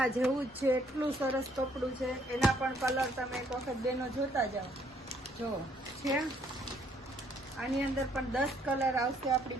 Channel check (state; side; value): normal; both; correlation 0.66